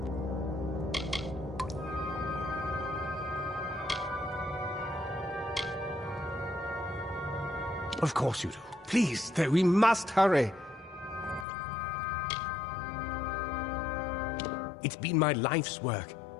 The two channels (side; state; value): right; drops out; at 11.5 s